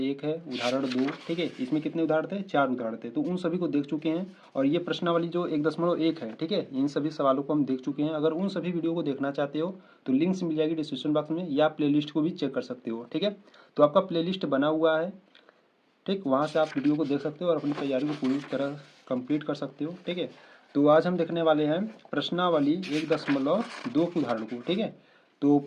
है, उदाहरण 2। ठीक है, इसमें कितने उदाहरण थे? 4 उदाहरण थे, तो उन सभी को देख चुके हैं। और ये प्रश्नावली जो 1.1 है, ठीक है, इन सभी सवालों को हम देख चुके हैं। अगर उन सभी वीडियो को देखना चाहते हो तो लिंक्स मिल जाएगी डिस्क्रिप्शन बॉक्स में, या प्ले लिस्ट को भी चेक कर सकते हो। ठीक है, तो आपका प्ले लिस्ट बना हुआ है, ठीक, वहाँ से आप वीडियो को देख सकते हो और अपनी तैयारी को पूरी तरह कंप्लीट कर सकते हो। ठीक है, तो आज हम देखने वाले हैं प्रश्नावली 1.2 के उदाहरण को। ठीक है, तो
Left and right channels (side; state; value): both; identical; correlation 1.00